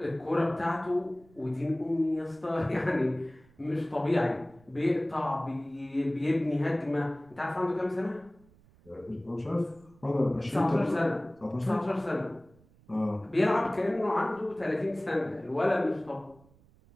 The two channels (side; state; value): right; noise; rumble, 28 dB below the sound